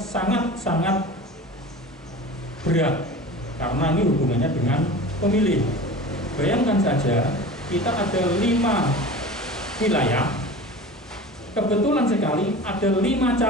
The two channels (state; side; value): normal; both; correlation 0.36